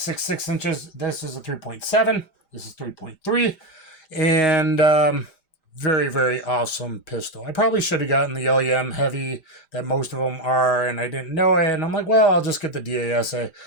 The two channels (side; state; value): right; late; 5.0 ms